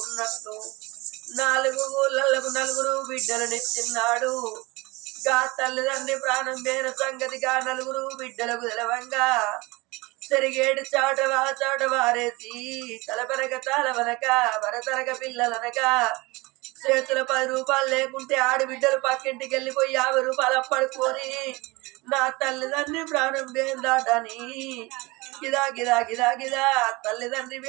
4 ఊళ్ళకు 4 బిడ్డలనిచ్చిన్నాడు గా తల్లిదండ్రి ప్రాణం వేరు సంగతిగా 4 బిడ్డలకు తెలవంగా సరిగేడు చాట వారేసి తలపనక తాళవనక వరతనక పిల్లలనక చేతుల 10 రూపాయలు లేకుంటే ఆడబిడ్డలు పక్కింటికి వెళ్ళిపోయి 50 రూపాయలు అప్పడుకొని నా తల్లిదండ్రి ప్రాణం దాటని గిదా గిదా గిదా గిదా తల్లిదండ్రి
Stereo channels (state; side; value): quieter; left; 23.7 dB